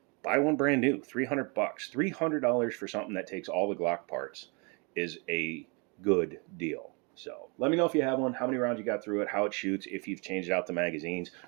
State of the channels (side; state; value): left; quieter; 32.2 dB